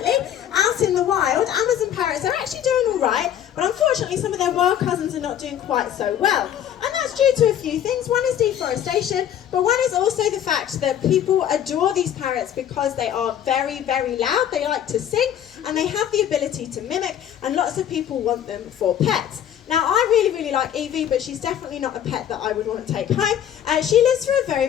out in the wild, Amazon parrots are actually doing all right, but unfortunately some of their wild cousins are not doing quite so well. And that's due to a few things. One is deforestation, but one is also the fact that people adore these parrots because they are very, very loud, they like to sing, and they have the ability to mimic, and lots of people want them for pets. Now, I really, really like Evie, but she's definitely not a pet that I would want to take home. She lives for a very,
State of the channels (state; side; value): quieter; right; 10.2 dB